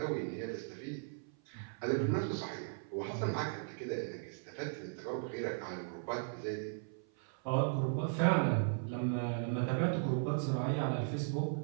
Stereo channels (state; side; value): silent; left; 53 dB below the other